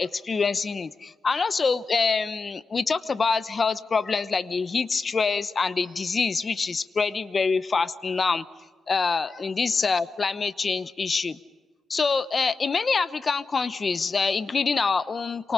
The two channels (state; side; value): quieter; right; 4.3 dB